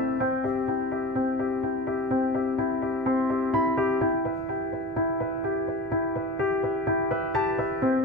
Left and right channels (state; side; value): noise; left; hum, 26 dB below the sound